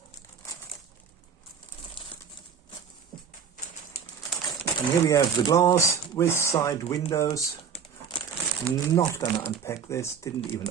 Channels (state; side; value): quieter; left; 7.0 dB